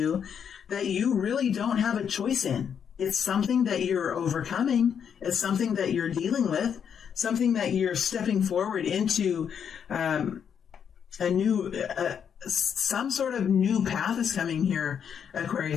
that you really don't have a choice in. It's something that you're overcoming, it's something that you're dealing with, something that you're stepping forward into some sort of new path is coming here,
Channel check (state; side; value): quieter; right; 7.8 dB